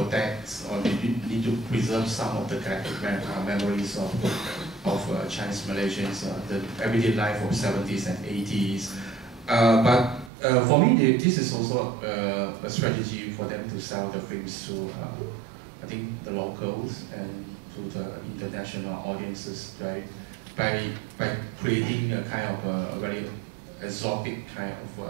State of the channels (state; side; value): drops out; left; at 10.3 s